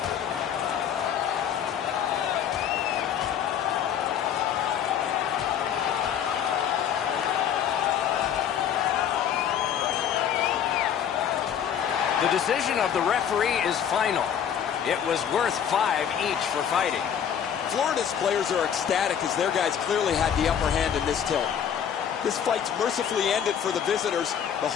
The decision of the referee is final. It was worth 5 each for fighting. Florida's players are ecstatic as their guys clearly had the upper hand in this tilt. This fight's mercifully ended for the visitors. The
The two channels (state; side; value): quieter; right; 8.8 dB